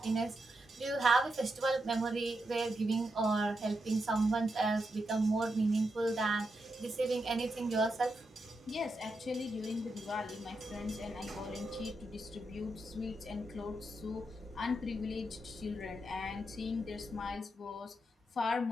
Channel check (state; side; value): normal; both; correlation 0.85